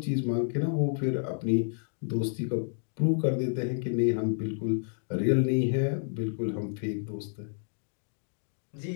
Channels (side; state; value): right; silent; digital silence